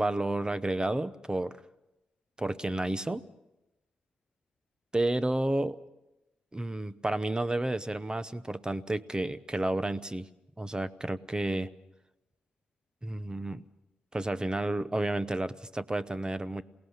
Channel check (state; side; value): normal; both; correlation 0.96